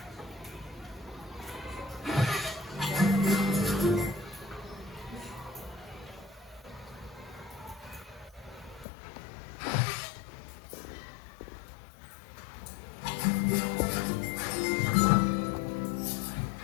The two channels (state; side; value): drops out; right; at 8.8 s